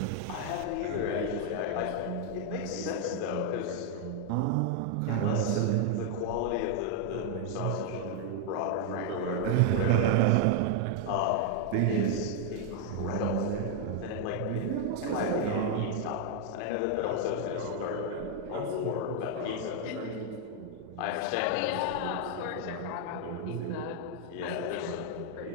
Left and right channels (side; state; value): both; different; correlation 0.00